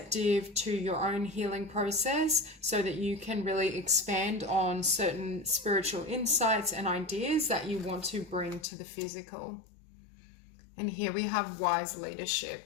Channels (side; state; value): right; drops out; at 8.7 s